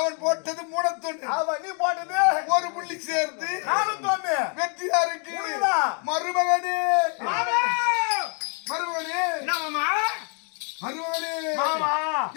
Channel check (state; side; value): quieter; right; 39.7 dB